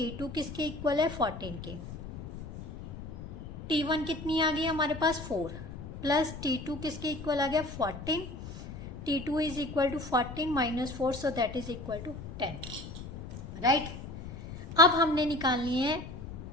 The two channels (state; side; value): noise; left; rumble, 11 dB below the sound